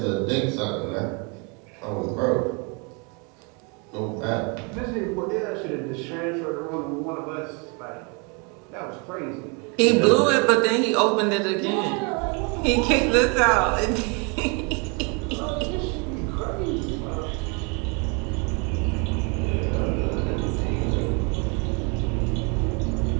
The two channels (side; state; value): left; quieter; 32.9 dB